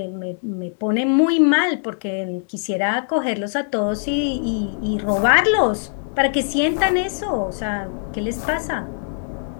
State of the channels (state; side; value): silent; right; digital silence